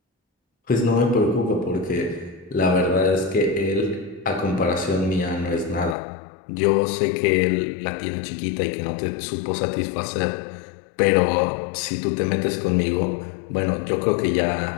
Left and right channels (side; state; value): right; drops out; at 6.0 s